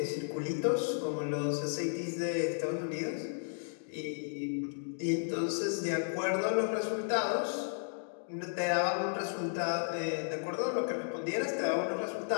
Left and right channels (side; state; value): right; silent; digital silence